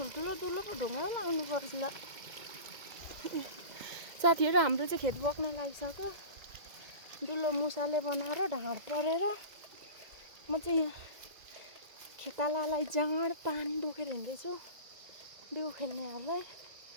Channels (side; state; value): left; late; 2.1 ms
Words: पो ढुङ्गा लाउनु पर्छ ल साथीहरू। हाम्रो चाहिँ खेत बोक्न लागिसक्यो दुलो मुसाले बनाएर ढाँड परेर म चाहिँ यहाँ खेतालालाई जाँड पानी बोकेर हिँड्दैछु बिउ खेल्नेहरूलाई।